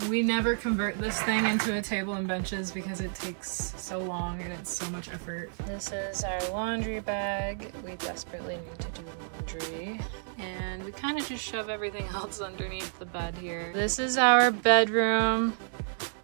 we never convert this thing into a table and benches because it takes so long and it's so much effort. This is our laundry bag. We desperately need to do laundry. And we kind of just shove everything else underneath the bed here. This is our bedroom.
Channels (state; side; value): silent; left; digital silence